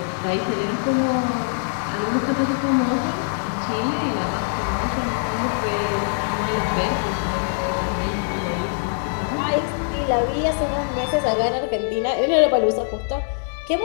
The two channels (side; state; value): right; silent; digital silence